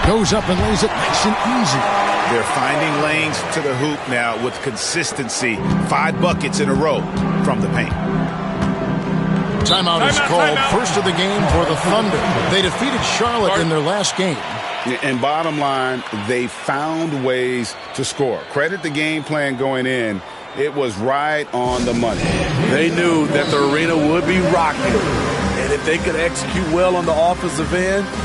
Goes up and lays it nice and easy. They're finding lanes to the hoop now with consistency. 5 buckets in a row from the paint. Timeout is called. First of the game for the Thunder. They defeated Charlotte in their last game. And bottom line, they found ways to score. Credit the game plan going in. It was right on the money. They knew that the arena would be rocking. And if they could execute well on the offensive end,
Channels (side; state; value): both; identical; correlation 1.00